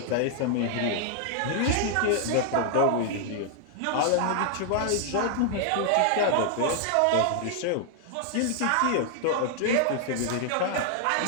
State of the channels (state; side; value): different; both; correlation 0.00